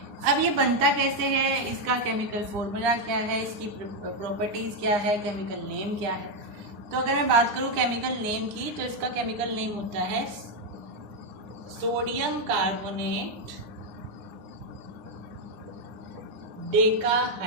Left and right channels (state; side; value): late; left; 9.8 ms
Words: अब ये बनता कैसे है, इसका केमिकल फॉर्मूला क्या है, इसकी प्रॉपर्टीज क्या है, केमिकल नेम क्या है। तो अगर मैं बात करूं केमिकल नेम की, तो इसका केमिकल नेम होता है सोडियम कार्बोनेट